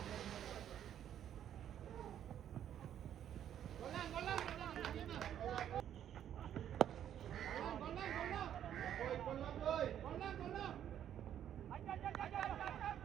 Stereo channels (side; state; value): left; quieter; 10.2 dB